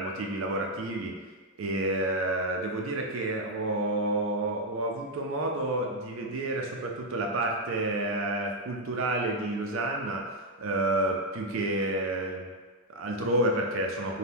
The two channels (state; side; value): normal; both; correlation 0.01